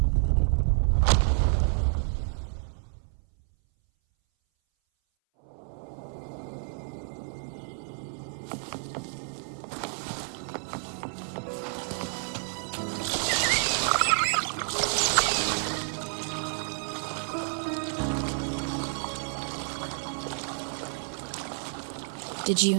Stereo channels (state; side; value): silent; left; 58 dB below the other